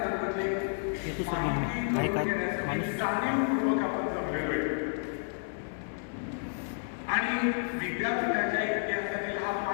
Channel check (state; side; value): silent; right; digital silence